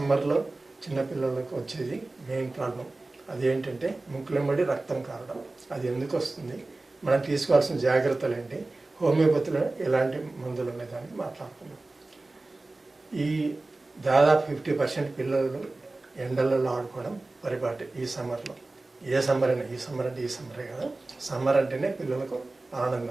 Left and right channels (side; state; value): left; quieter; 3.1 dB